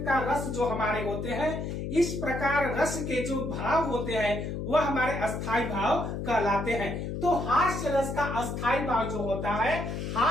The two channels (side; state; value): left; noise; hum, 4 dB below the sound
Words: रस जो हमारे होते हैं, इस प्रकार रस के जो भाव होते हैं वह हमारे अस्थाई भाव कहलाते हैं। तो हास्य रस का अस्थाई भाव जो होता है